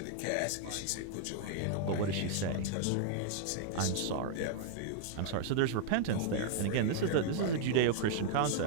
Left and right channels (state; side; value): different; both; correlation -0.01